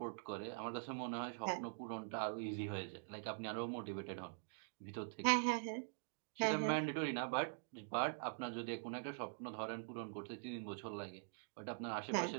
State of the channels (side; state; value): left; silent; digital silence